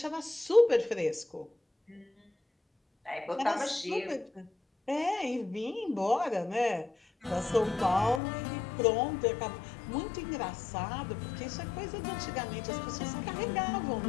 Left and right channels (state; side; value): drops out; right; at 8.2 s